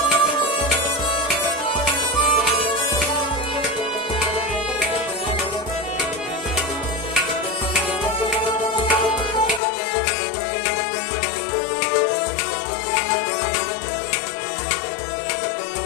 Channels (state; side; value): drops out; right; at 9.6 s